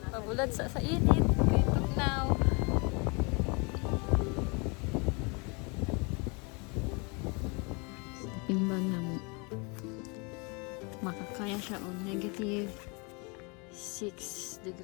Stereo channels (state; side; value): quieter; right; 31.3 dB